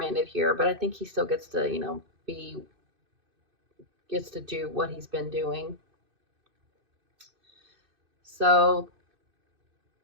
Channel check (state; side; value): late; left; 2.6 ms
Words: here, but I think he still gets to, gets to do what he's been doing. So